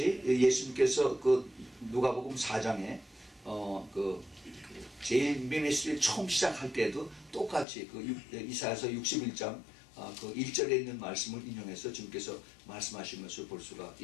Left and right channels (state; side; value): drops out; right; at 7.7 s